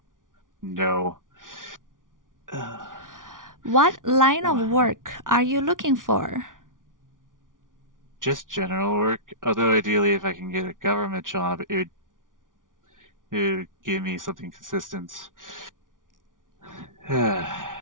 What line of work are you looking for? Just general work. Although ideally, if I can get a government job, it would give me something consistent.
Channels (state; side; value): late; left; 0.88 ms